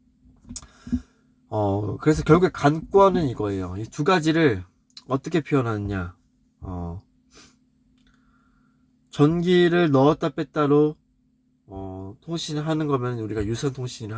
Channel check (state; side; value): identical; both; correlation 1.00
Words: 그래서 결국에 관건은 이거예요. 이 두 가지를 어떻게 표현하느냐. 전기를 넣었다 뺐다로 통신을 하는 거면 우리가 유선 통신을